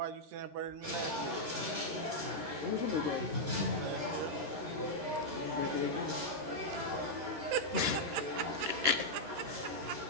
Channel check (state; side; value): late; left; 13 ms